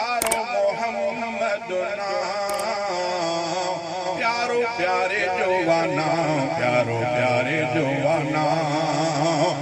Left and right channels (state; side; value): identical; both; correlation 1.00